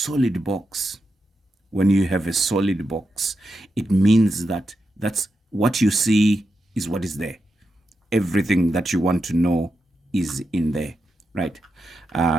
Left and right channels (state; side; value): normal; both; correlation 0.87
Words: box, when you have a solid box, it means that that's what you see is what is there. Everything that you want to know is in there, right?